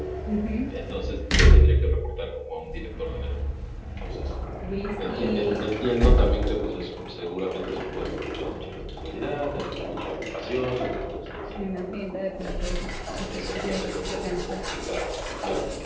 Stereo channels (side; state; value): both; identical; correlation 1.00